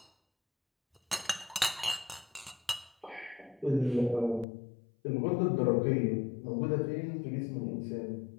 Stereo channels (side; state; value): right; drops out; at 4.5 s